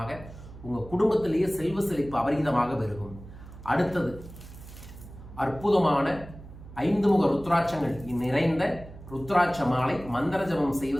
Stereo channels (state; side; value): noise; right; hum, 16 dB below the sound